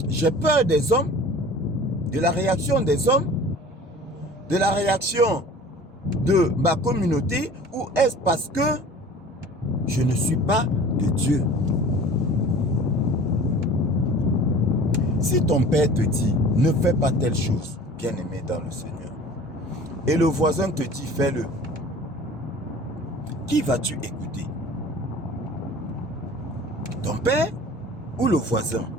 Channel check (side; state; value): both; normal; correlation 0.44